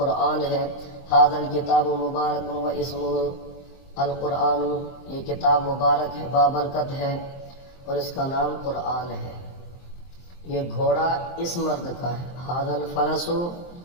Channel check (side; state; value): right; late; 23 ms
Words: ہے. ھذا الکتاب مبارک واسمہ القرآن یہ کتاب مبارک ہے بابرکت ہے اور اس کا نام قرآن ہے. یہ گھوڑا اس مرد کا ہے. ھذا الفرس